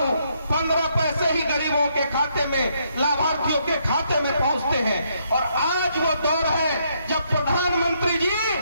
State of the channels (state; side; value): inverted; both; correlation -0.74